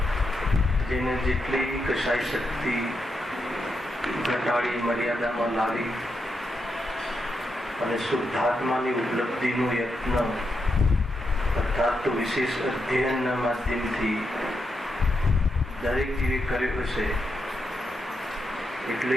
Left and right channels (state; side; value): normal; both; correlation 0.84